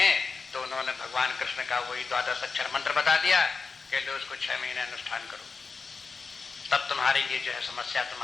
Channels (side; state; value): right; quieter; 4.7 dB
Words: तो उन्होंने भगवान कृष्ण का वही 12 अक्षर मंत्र बता दिया कि लो उसको 6 महीने अनुष्ठान करो, तब तुम्हारी ये जो है समस्या